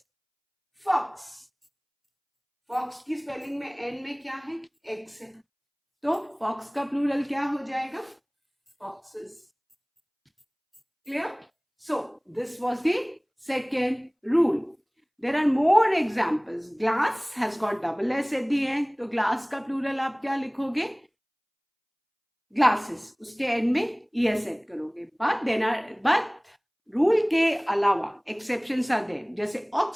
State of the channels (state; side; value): identical; both; correlation 1.00